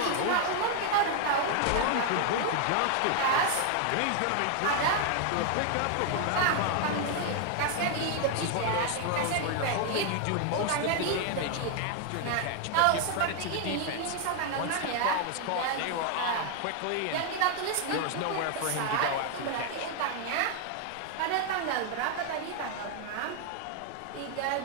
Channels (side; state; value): both; different; correlation 0.00